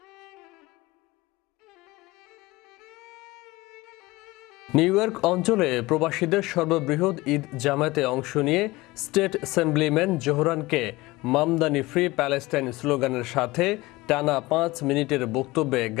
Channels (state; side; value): quieter; right; 20.7 dB